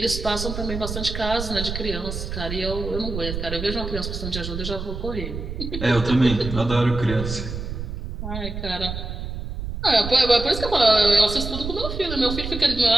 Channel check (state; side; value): noise; right; rumble, 6 dB below the sound